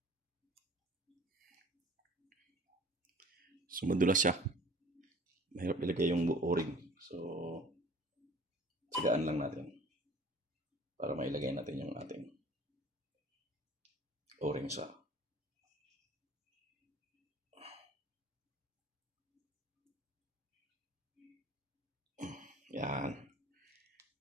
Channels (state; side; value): normal; both; correlation 0.47